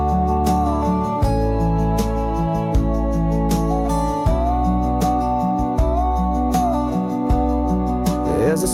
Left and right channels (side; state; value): both; identical; correlation 1.00